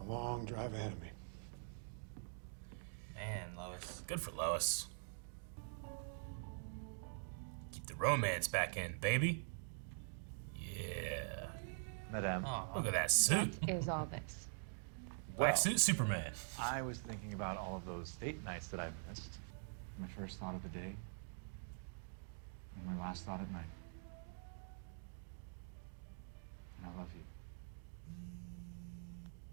long drive ahead of me. Man, Lois. Good for Lois. Keep the romance back in, baby. Yeah. Madame, Oh, Look at that suit. Is all this. Black suit Superman. I was thinking about all of those date nights that I've missed. My first thought of the day, and my last thought at night. And I love you.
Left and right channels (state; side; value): silent; left; digital silence